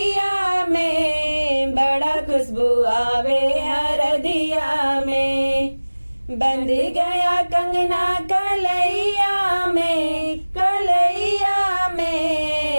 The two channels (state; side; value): inverted; both; correlation -1.00